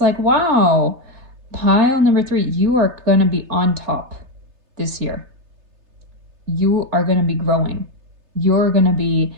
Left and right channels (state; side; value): late; left; 3.3 ms